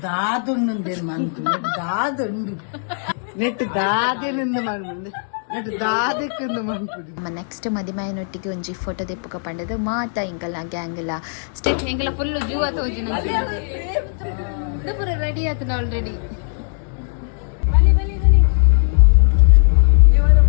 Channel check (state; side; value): silent; right; digital silence